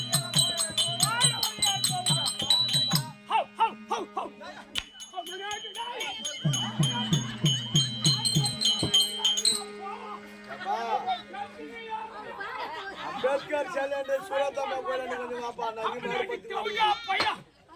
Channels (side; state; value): both; identical; correlation 1.00